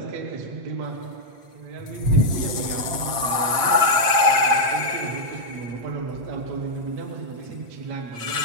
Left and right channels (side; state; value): left; late; 7.7 ms